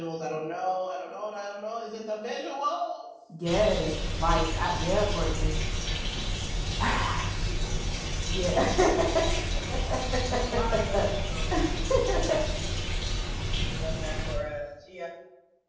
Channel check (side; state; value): both; identical; correlation 1.00